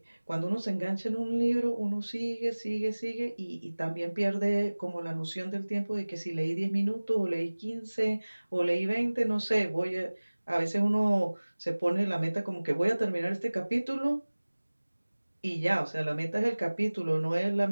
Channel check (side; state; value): both; inverted; correlation -1.00